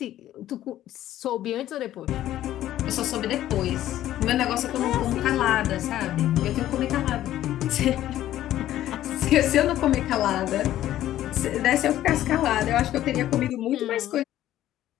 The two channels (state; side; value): quieter; right; 13.1 dB